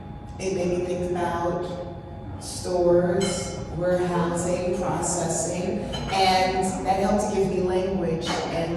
It made me think about stores, warehousing, processing, and that helped to give me language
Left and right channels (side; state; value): both; identical; correlation 1.00